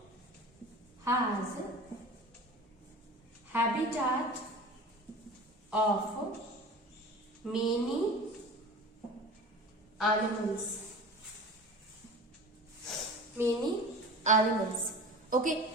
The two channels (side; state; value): both; normal; correlation 0.37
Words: has habitat of many animals. Okay,